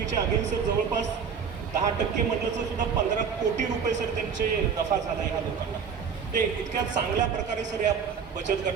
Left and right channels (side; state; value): left; quieter; 6.6 dB